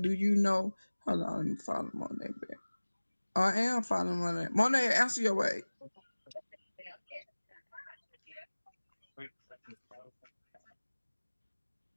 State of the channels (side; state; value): both; inverted; correlation -1.00